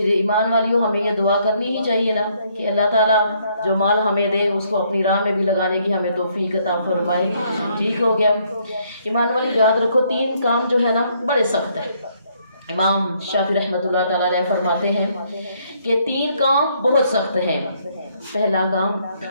ایمان والیوں، ہمیں یہ دعا کرنی ہی چاہیے نا کہ اللہ تعالیٰ جو مال ہمیں دے اس کو اپنی راہ میں بھی لگانے کی ہمیں توفیق عطا فرمائے۔ ٹھیک ہو گیا؟ ایمان والی یاد رکھو، 3 کام جو ہے نا بڑے سخت ہیں۔ امام شافعی رحمۃ اللہ تعالیٰ علیہ فرماتے ہیں کہ 3 کام بہت سخت ہیں۔ پہلا کام،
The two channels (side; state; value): both; inverted; correlation -0.69